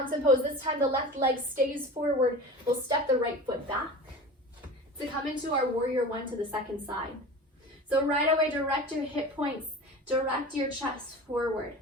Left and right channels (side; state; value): both; normal; correlation 0.35